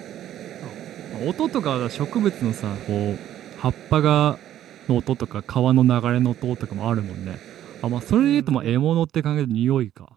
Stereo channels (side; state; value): left; quieter; 11.8 dB